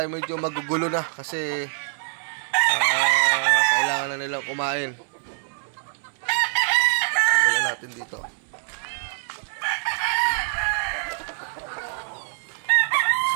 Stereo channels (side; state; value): left; silent; digital silence